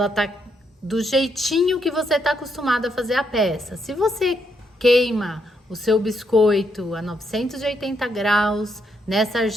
tá do jeitinho que você tá acostumado a fazer a peça. Se você queima o seu biscoito a 980 graus nessa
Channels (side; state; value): both; normal; correlation 0.77